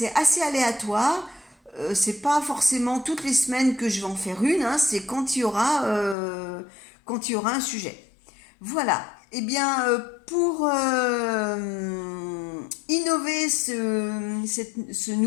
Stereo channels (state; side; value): drops out; right; at 6.2 s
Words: assez aléatoire. C'est pas forcément toutes les semaines que je vais en faire une, hein, c'est quand il y aura un sujet. Voilà. Eh bien, pour innover ce